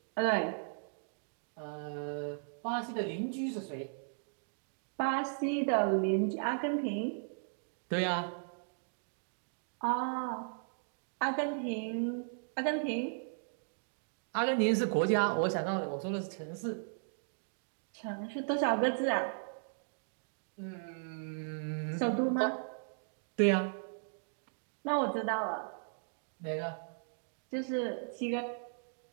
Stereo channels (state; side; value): silent; left; digital silence